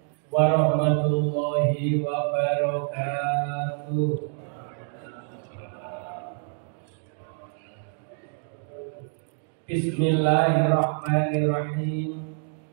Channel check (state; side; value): silent; left; 56 dB below the other